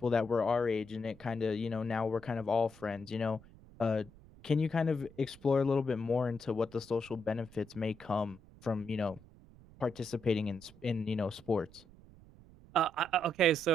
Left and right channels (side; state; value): right; noise; rumble, 22 dB below the sound